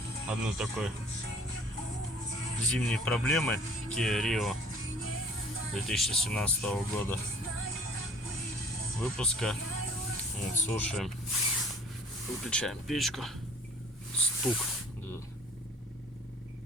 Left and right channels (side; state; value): both; normal; correlation 0.52